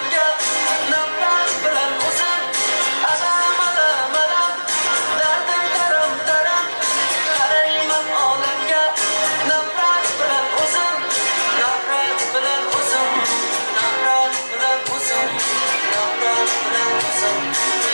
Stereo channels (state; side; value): inverted; both; correlation -1.00